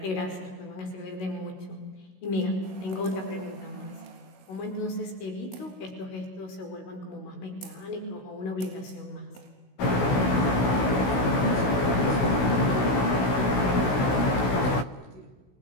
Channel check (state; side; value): late; right; 16 ms